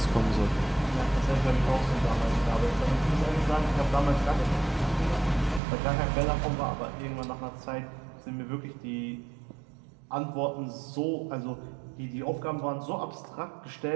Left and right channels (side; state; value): left; drops out; at 5.6 s